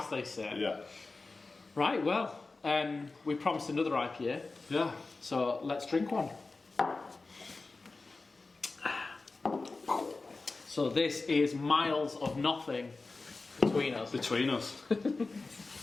they say. Yeah. Right, well, we promised another IPA, Yeah. so let's drink one. So this is Miles of Nothing between us. Between us.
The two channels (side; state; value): right; quieter; 3.7 dB